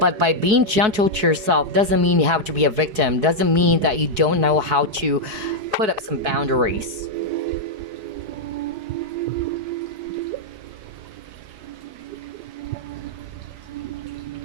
by being gentle to yourself doesn't mean you have to be a victim. Doesn't mean that you don't know how to put up some boundaries.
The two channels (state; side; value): late; left; 4.9 ms